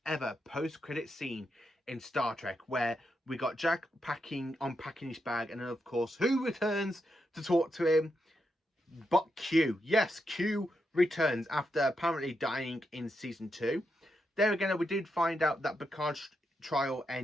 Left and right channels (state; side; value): normal; both; correlation 0.83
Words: ever post-credit scene in Star Trek, where we got Jack unpacking his bag, and then of course who returns to talk to him but Q. Yes, Q returns after apparently dying in season 2. There again, we did find out that Picard's trial